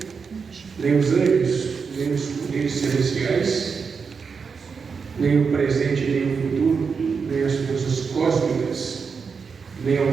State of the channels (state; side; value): quieter; left; 5.6 dB